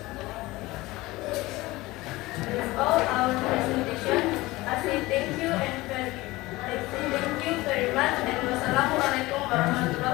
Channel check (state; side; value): quieter; right; 19.9 dB